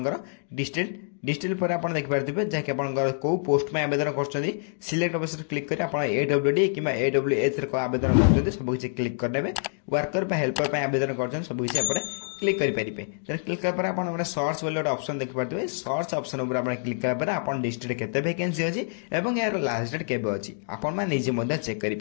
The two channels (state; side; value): silent; right; digital silence